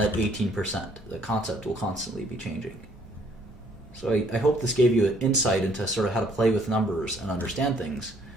18%. The concept will constantly be changing. So I hope this gave you an insight into sort of how to play with numbers and understand things.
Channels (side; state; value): both; normal; correlation 0.63